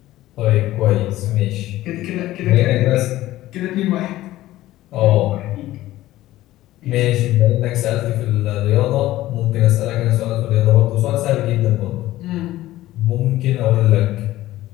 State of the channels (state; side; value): quieter; right; 15.6 dB